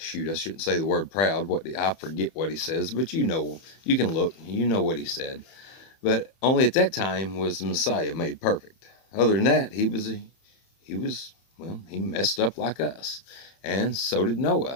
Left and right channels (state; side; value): late; right; 30 ms